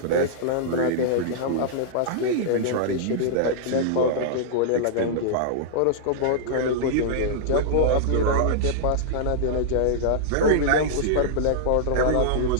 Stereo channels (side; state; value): both; different; correlation -0.02